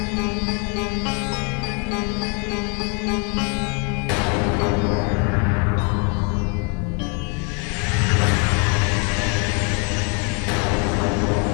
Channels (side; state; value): right; quieter; 36.2 dB